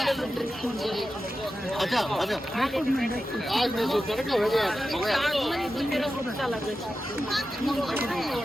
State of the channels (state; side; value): normal; both; correlation 0.92